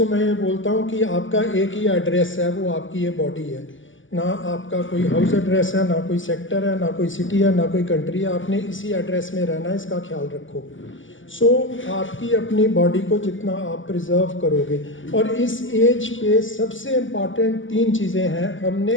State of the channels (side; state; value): right; late; 0.57 ms